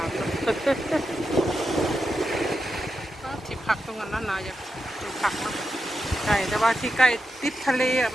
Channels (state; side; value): normal; both; correlation 0.88